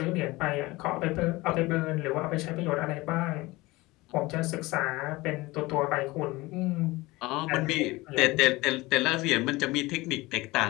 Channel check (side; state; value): right; quieter; 21.1 dB